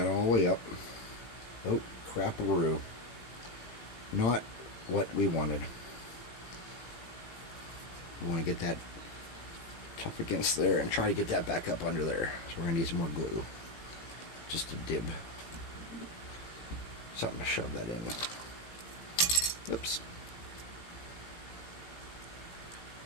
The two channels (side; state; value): right; late; 18 ms